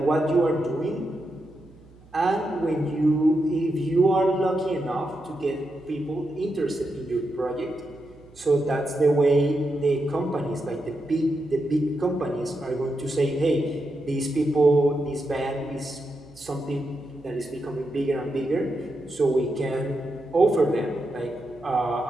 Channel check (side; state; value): right; noise; hum, 25 dB below the sound